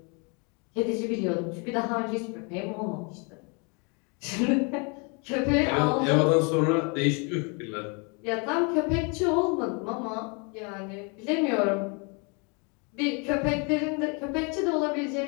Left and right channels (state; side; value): quieter; right; 33.3 dB